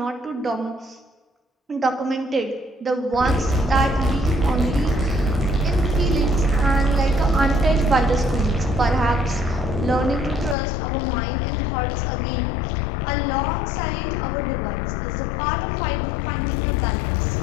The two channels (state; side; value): drops out; right; at 10.6 s